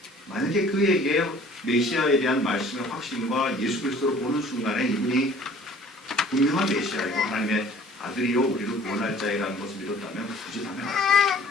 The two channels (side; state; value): both; normal; correlation 0.51